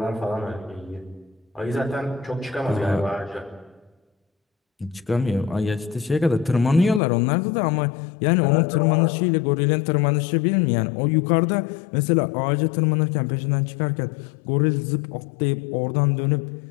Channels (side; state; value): right; drops out; at 7.0 s